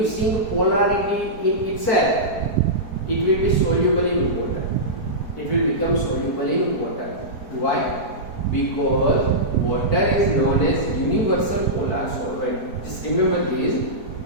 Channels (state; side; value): late; right; 4.6 ms